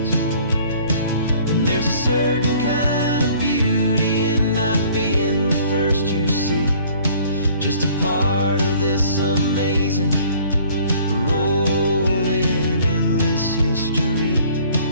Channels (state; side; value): inverted; both; correlation -0.55